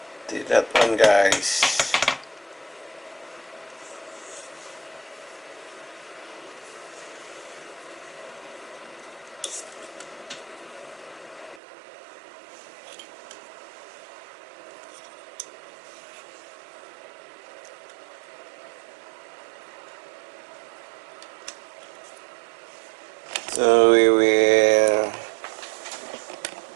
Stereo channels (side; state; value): left; drops out; at 11.6 s